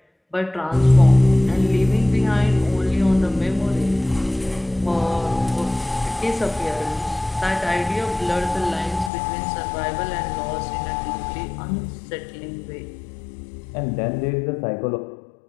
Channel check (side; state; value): right; drops out; at 9.1 s